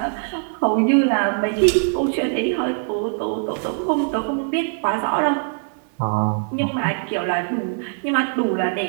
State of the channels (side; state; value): left; silent; 63 dB below the other